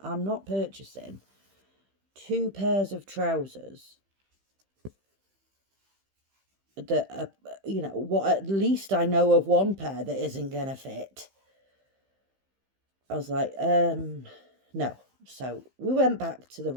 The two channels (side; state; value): left; late; 15 ms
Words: I'm not purchasing 2 pairs of trousers that are, you know, what, at least I know of one pair that isn't going to fit. I was like, no. So we went back to the